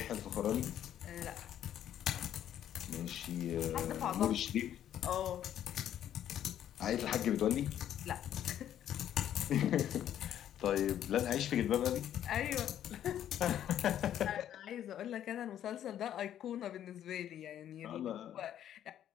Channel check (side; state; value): right; quieter; 10.8 dB